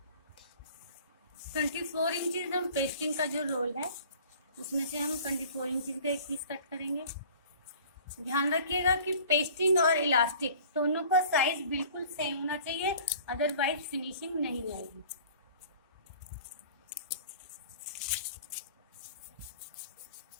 24 इंचेस हम पेस्टिंग का जो रोल है उसमें से हम 24 इंचेस का एक पीस कट करेंगे। ध्यान रखिएगा कि पेस्टिंग और इलास्टिक दोनों का साइज बिल्कुल सेम होना चाहिए, अदरवाइज फिनिशिंग नहीं आएगी।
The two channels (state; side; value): inverted; both; correlation -0.47